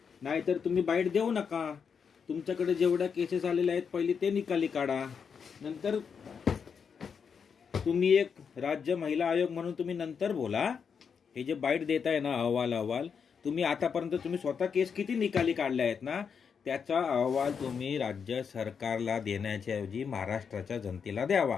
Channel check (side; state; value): right; quieter; 6.5 dB